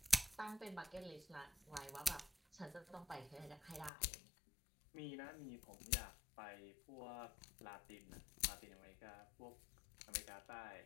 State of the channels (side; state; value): right; drops out; at 3.9 s